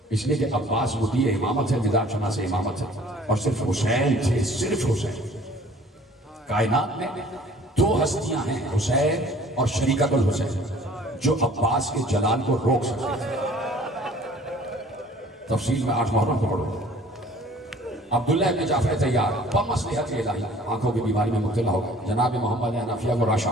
اس لیے کہ عباس مطیع امامت ہے، نظام شناس امامت ہے، اور صرف حسین تھے، صرف حسین۔ کائنات میں دو ہستیاں ہیں، حسین اور شریکت الحسین، جو عباس کے جلال کو روک سکتے تھے۔ تفصیل میں 8 محرم کو پڑھو۔ عبداللہ ابن جعفر طیار بمصلحت الہی آنکھوں کی بیماری میں مبتلا ہو گئے، جناب محمد حنفیہ کو راشا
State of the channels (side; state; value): both; normal; correlation 0.52